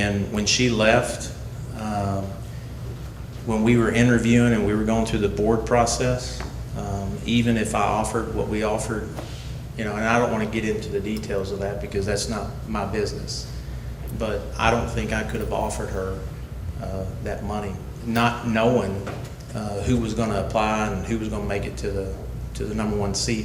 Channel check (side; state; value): both; identical; correlation 1.00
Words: when she left, when we were interviewing and we were going through the board process, even if I offered what we offered, and I don't want to get into the details of that because that's not my business, but I don't think I could have offered her that money, not knowing who was going to apply and who was going to make it to the number one